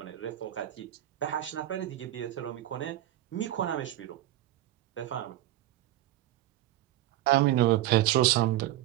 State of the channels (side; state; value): left; quieter; 14.4 dB